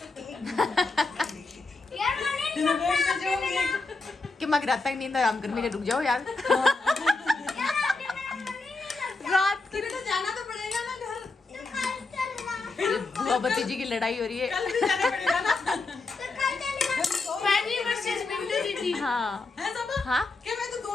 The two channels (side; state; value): right; quieter; 3.5 dB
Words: कि मैं रात तक नींद आराम करने के रुक जाओ यार। रात की तो जाना तो पड़ेगा ना घर। बुआ भतीजी की लड़ाई हो रही है। कल भी जाना पड़ेगा ना। फैनी वर्सेस विंटर दीदी। हाँ है सब? हाँ क्या मैं तो 2